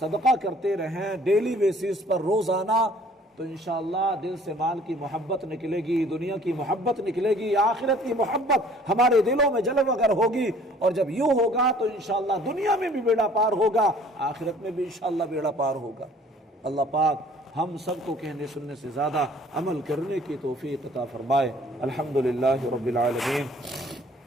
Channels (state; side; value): normal; both; correlation 0.54